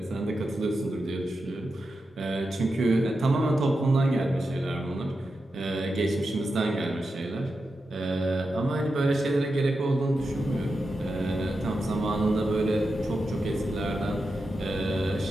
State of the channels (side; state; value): both; normal; correlation 0.89